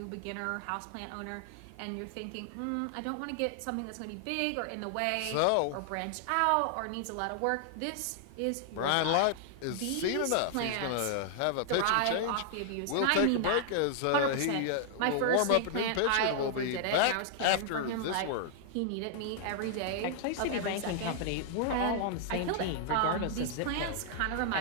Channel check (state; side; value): different; both; correlation 0.00